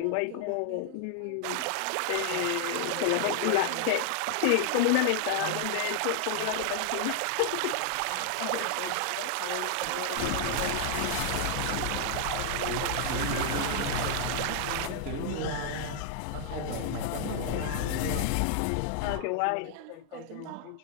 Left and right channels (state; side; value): different; both; correlation 0.00